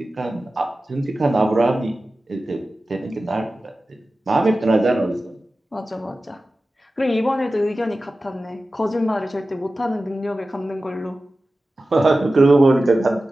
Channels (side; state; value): both; normal; correlation 0.95